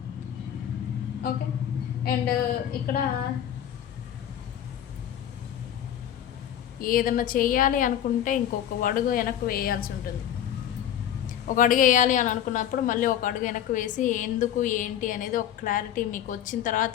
ఓకే. అండ్ ఇక్కడ ఏదన్నా చేయాలి అనుకుంటే ఇంకొక అడుగు వెనక్కి వేయాల్సి ఉంటుంది. ఒక అడుగు వేయాలి అని అనుకున్నప్పుడు మళ్ళీ ఒక అడుగు వెనక్కి వేసి ఎందుకు ఏంటి అనేది ఒక క్లారిటీ మీకు వచ్చిన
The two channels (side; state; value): right; quieter; 10.4 dB